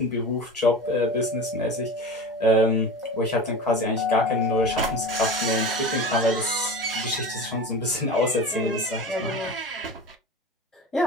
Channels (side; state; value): both; normal; correlation 0.31